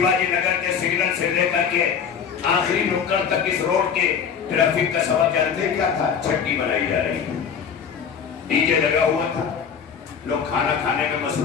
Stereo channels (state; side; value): quieter; right; 7.1 dB